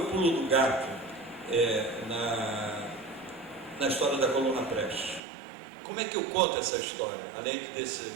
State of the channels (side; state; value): left; drops out; at 5.2 s